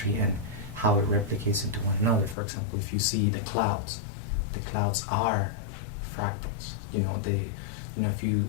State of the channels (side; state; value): right; drops out; at 2.4 s